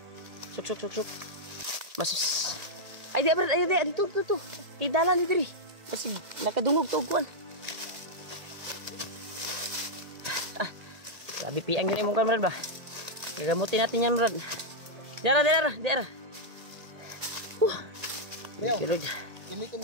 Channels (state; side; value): late; left; 1.8 ms